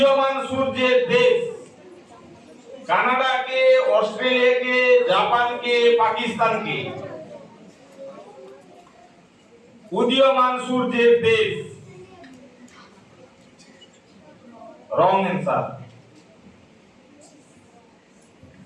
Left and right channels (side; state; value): both; identical; correlation 1.00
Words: সূর্যের দেশ কানাডাকে, অস্ট্রেলিয়াকে, জাপানকে, পাকিস্তানকে। উদীয়মান সূর্যের দেশ রং অ্যান্সার।